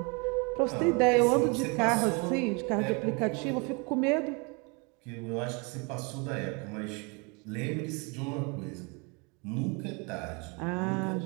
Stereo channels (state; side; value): quieter; left; 31.5 dB